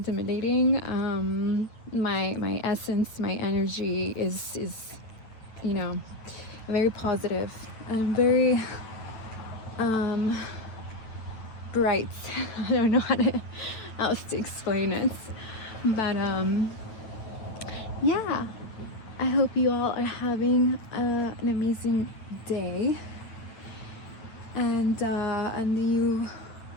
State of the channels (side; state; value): right; late; 9.1 ms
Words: my essence, my energy is you know, very positive and very bright. I don't know how else to explain it, but yeah, I hope you all are having an amazing day, and you